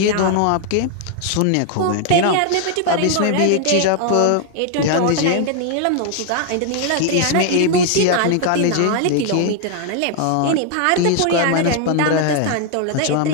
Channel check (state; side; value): different; both; correlation 0.01